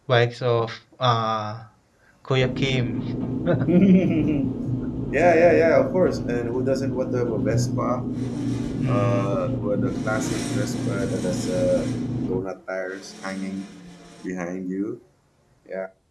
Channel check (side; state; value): both; identical; correlation 1.00